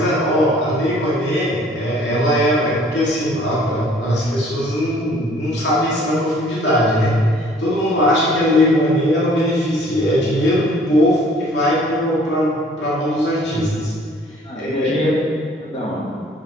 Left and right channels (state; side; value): normal; both; correlation 0.56